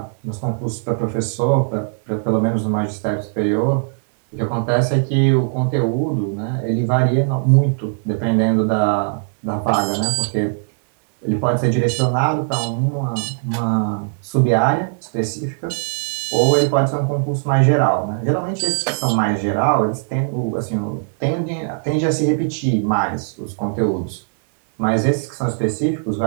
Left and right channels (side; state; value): left; silent; digital silence